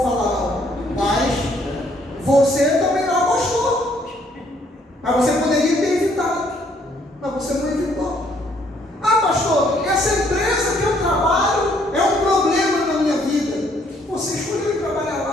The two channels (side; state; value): both; normal; correlation 0.66